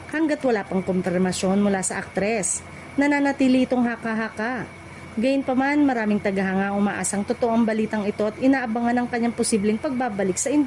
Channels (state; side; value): identical; both; correlation 1.00